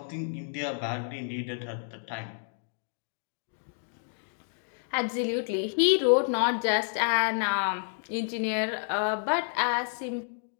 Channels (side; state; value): right; silent; digital silence